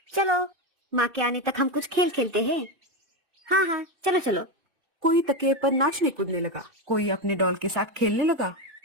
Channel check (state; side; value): late; left; 2.6 ms